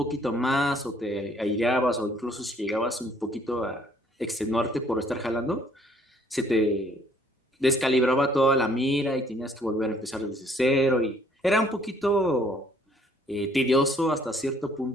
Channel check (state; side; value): normal; both; correlation 0.62